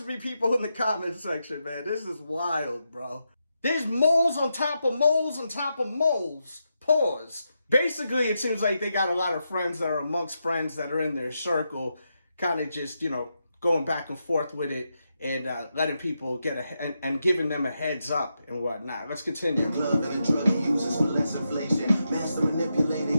me, people in the comment section, man. This is wild, bro. There's moles on top of moles on top of moles. Pause. Basically, it seems like they got a lot of friends that are amongst friends that are in their circle, kind of just, you know, going back and forth with it and letting people get and giving them a heads up and whatnot. Let's continue. Glove and the drug he uses for less inflation. Master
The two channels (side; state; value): both; inverted; correlation -0.85